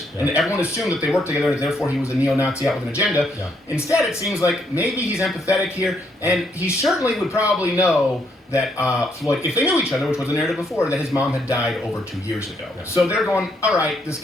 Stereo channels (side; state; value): both; normal; correlation 0.73